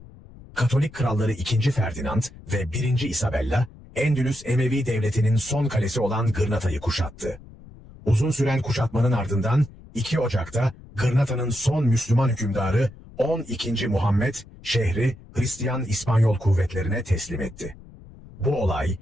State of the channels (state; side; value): noise; left; rumble, 20 dB below the sound